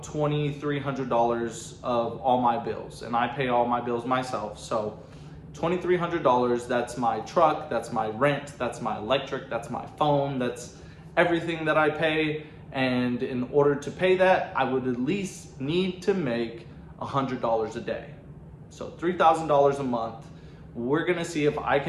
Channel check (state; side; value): identical; both; correlation 1.00